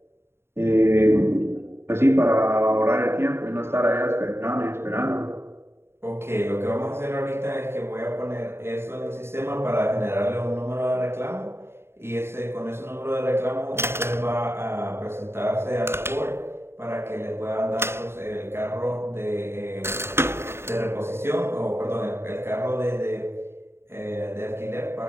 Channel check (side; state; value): left; late; 0.12 ms